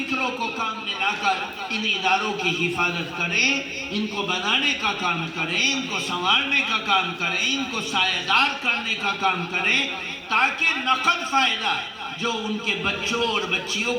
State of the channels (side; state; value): both; identical; correlation 1.00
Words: کو کام میں لا کر ان اداروں کی حفاظت کریں، ان کو بنانے کا کام کریں، ان کو سنوارنے کا کام کریں، ان کو سایہ دار کرنے کا کام کریں، تاکہ نقد فائدہ جو ان کے بچوں اور بچیوں